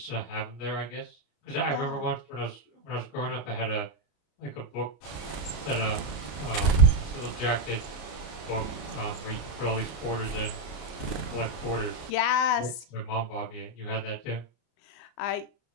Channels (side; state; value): right; late; 33 ms